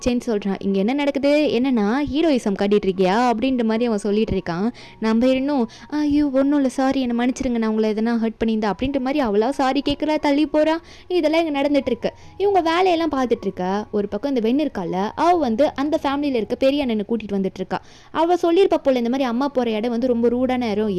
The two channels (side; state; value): both; identical; correlation 1.00